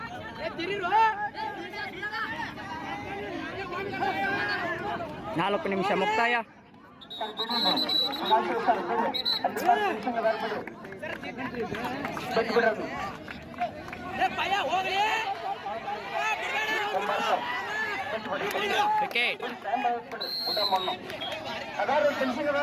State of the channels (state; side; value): identical; both; correlation 1.00